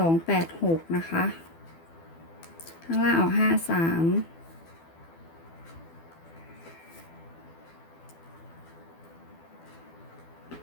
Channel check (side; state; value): right; late; 12 ms